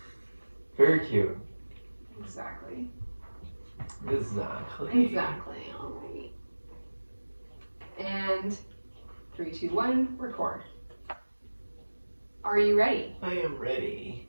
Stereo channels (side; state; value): both; inverted; correlation -1.00